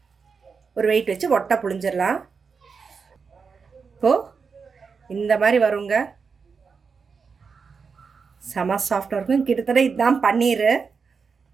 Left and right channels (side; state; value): left; quieter; 5.4 dB